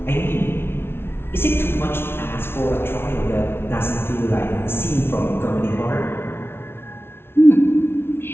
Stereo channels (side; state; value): right; late; 0.12 ms